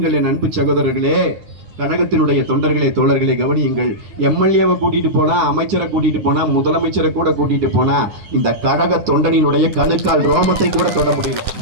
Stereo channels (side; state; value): left; late; 9.9 ms